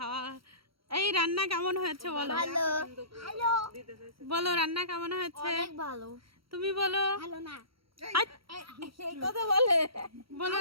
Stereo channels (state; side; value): late; left; 0.75 ms